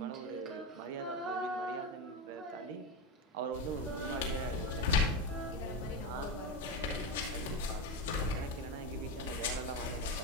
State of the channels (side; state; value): both; normal; correlation 0.15